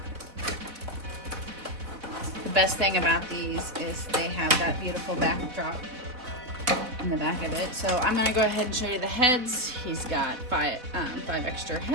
The best thing about these is they have that beautiful backdrop in the back of it. So I'm going to go ahead and show you the heads. He's got five extra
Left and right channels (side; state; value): left; late; 4.1 ms